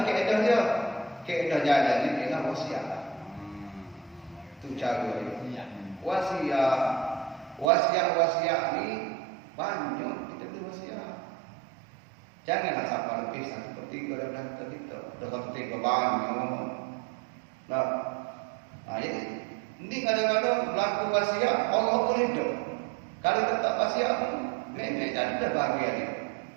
keadaan dia? Keadaan jalan ni ialah wasiat lah. Itu cara dia. Wasiat ni banyak kita beri wasiat. Janganlah sampai lebih 1/3 daripada harta kita. Dah 1/3 banyak. Nah, jadi ini kadang-kadang berlaku wasiat Allah boleh hidup. Kalau tetap wasiat memang jadi dah bahagia dia.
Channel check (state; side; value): drops out; left; at 7.7 s